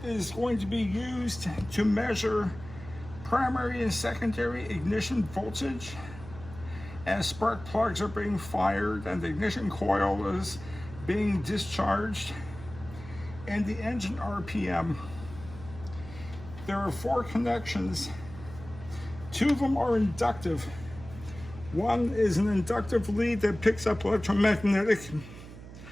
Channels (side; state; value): right; noise; hum, 15 dB below the sound